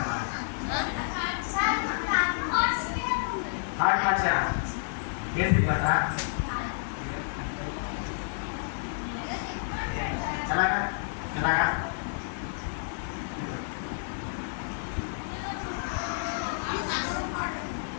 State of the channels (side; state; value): right; silent; digital silence